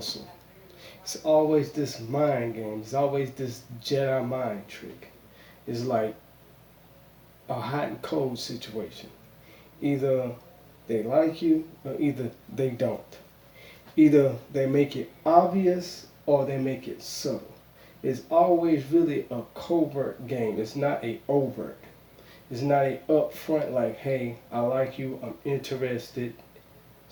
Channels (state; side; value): identical; both; correlation 1.00